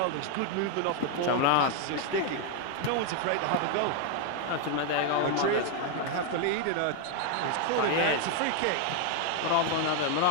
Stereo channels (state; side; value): different; both; correlation 0.01